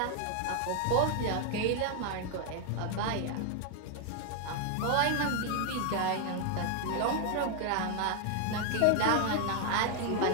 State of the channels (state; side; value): different; both; correlation 0.00